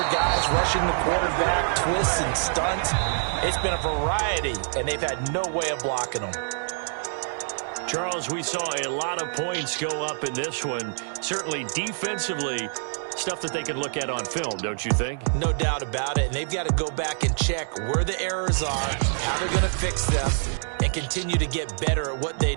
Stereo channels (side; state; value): left; silent; 61 dB below the other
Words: guys rushing the quarterback, twists and stunts. It's been a variety, and they've had no way of blocking them. Charles, we saw a lot of points go up in this one. Certainly defensively, stuff that they can look at on film, don't you think? No doubt about it. And they've got to go back and check where the errors are, how they're going to fix them, and continue to get better at what they